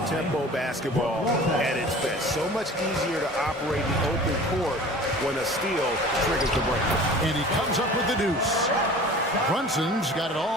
basketball at its best. So much easier to operate the open court when a steal triggers the break. And he comes up with the deuce. Brunson's got it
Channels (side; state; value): both; normal; correlation 0.42